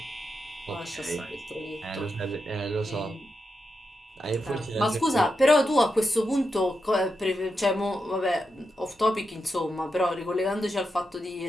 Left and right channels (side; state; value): both; normal; correlation 0.86